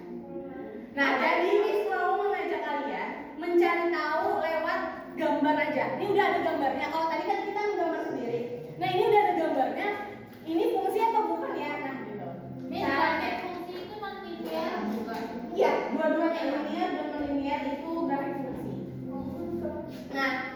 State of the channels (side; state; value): both; identical; correlation 1.00